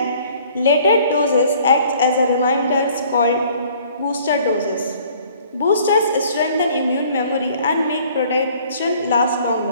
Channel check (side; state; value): both; inverted; correlation -0.56